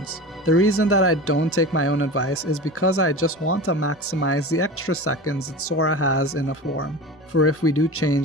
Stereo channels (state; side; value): normal; both; correlation 0.31